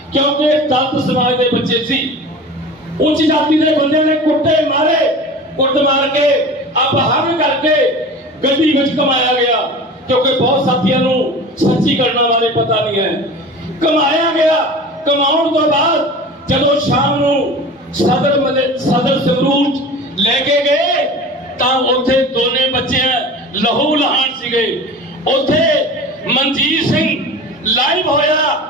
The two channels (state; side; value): normal; both; correlation 0.36